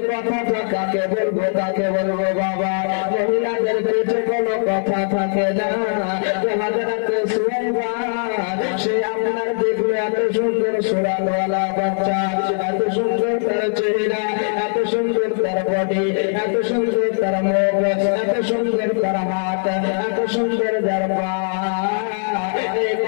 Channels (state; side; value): silent; right; 64 dB below the other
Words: কথাটা কাকে বলবো কাকে বলবো বাবা, মহিলাদের পেটে কোনো কথা থাকে না। হযরত সুয়াইবা সে আপনার দেখলো এত সুন্দর সুরানওয়ালা বাচ্চা, এত সুন্দর তার চেহারা, এত সুন্দর তার বডি, এত সুন্দর তার মুখ, এত সুন্দর তার হাত, এত সুন্দর তার পা, এই